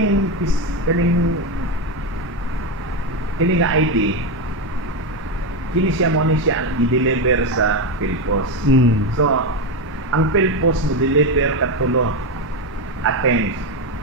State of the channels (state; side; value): normal; both; correlation 0.11